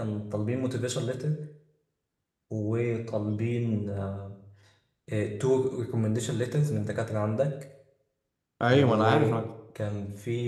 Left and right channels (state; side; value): identical; both; correlation 1.00